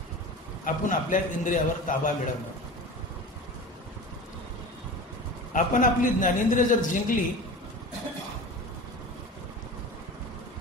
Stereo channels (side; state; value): both; normal; correlation 0.33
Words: आपण आपल्या इंद्रियावर ताबा मिळवणं। आपण आपली ज्ञानेंद्रिय जर जिंकली